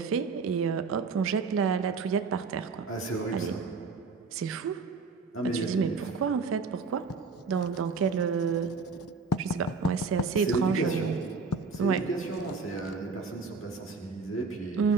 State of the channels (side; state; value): left; quieter; 4.6 dB